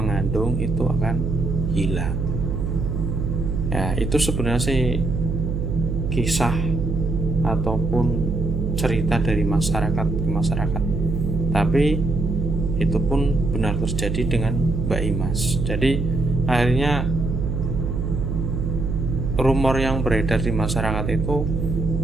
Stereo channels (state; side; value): noise; right; hum, 1 dB below the sound